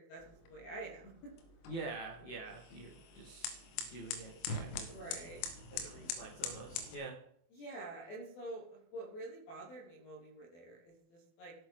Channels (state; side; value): late; right; 24 ms